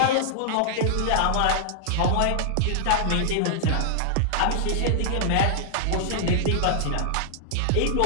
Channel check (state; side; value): different; both; correlation -0.01